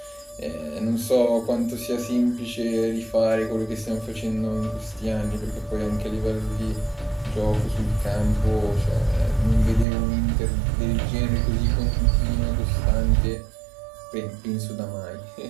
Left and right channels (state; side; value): drops out; left; at 9.9 s